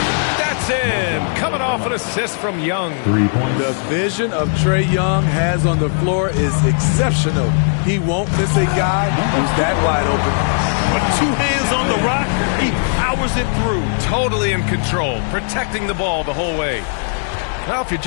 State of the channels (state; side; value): silent; right; digital silence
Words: That's in. Coming off an assist from Young. 3 points. The vision of Trae Young has on the floor is exceptional. He won't miss a guy who's that wide open. With 2 hands on the rock, he powers it through. Totally in control, protecting the ball the whole way. Now, if you're